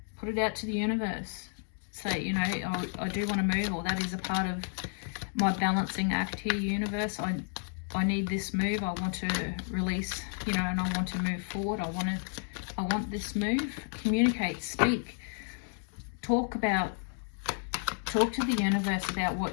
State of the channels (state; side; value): silent; right; 57 dB below the other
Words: Put it out to the universe. Say, you know, I do want to move, or that is a part of my balancing act here, universe. I need this move. I want to release, you know, and I want to move forward. I want this move. Communicate, speak, talk to the universe about